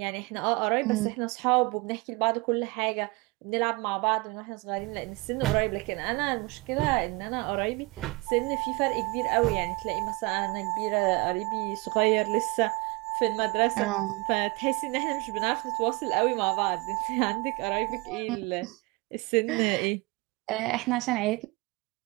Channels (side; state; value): left; quieter; 25.2 dB